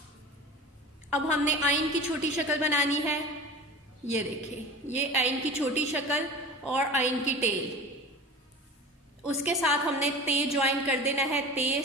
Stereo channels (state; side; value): normal; both; correlation 0.35